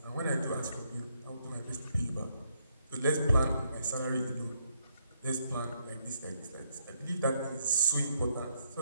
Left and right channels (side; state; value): both; inverted; correlation -0.75